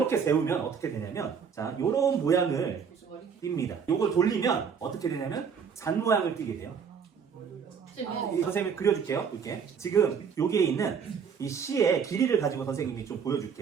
세우면 어떻게 되냐면, 자, 요런 모양을 띱니다. 요걸 돌리면 어떻게 되냐면, 잔 모양을 띠게 돼요. 선생님이 그려줄게요. 이렇게 지금 여기에 있는 이 시의 길이를 가지고 선생님이 좀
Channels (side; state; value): left; quieter; 6.6 dB